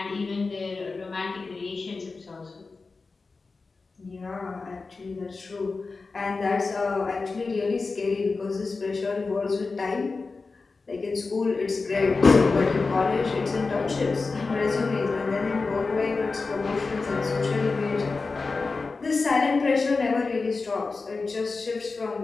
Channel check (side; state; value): right; quieter; 4.1 dB